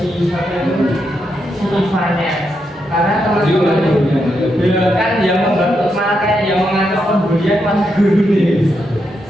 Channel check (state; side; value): normal; both; correlation 0.82